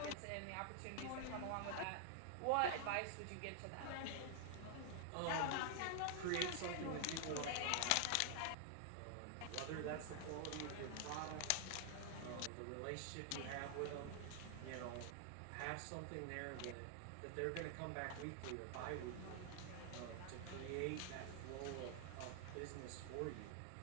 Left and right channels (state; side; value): different; both; correlation 0.00